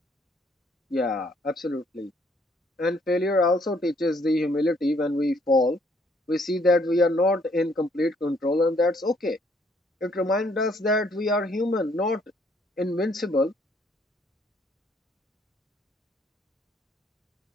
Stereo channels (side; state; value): both; normal; correlation 0.66